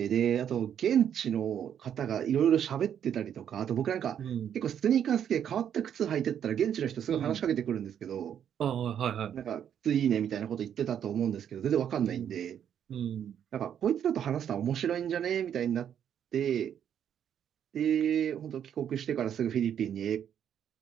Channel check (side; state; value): left; quieter; 9.1 dB